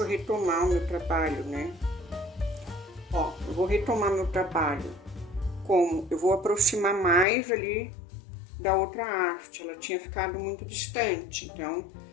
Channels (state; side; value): drops out; right; at 7.2 s